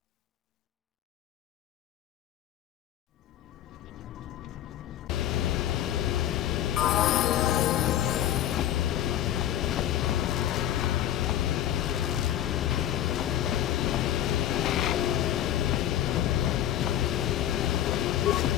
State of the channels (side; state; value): right; quieter; 11.9 dB